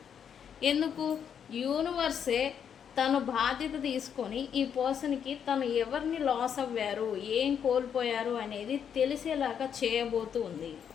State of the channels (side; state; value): right; quieter; 8.1 dB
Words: ఎందుకు? యూనివర్సే తను బాధ్యత తీసుకొని ఈ పర్సన్కి తను ఎవరిని లాస్ అవ్వారు, ఏం కోల్పోయారు అనేది తెలిసేలాగా చేయబోతూ ఉంది.